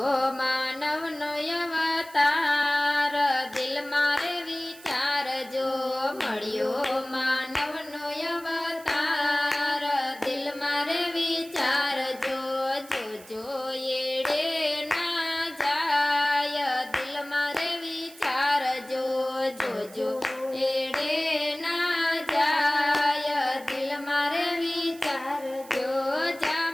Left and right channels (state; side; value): noise; right; hiss, 20 dB below the sound